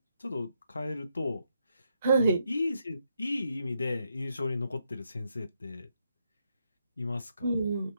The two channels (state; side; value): inverted; both; correlation -0.79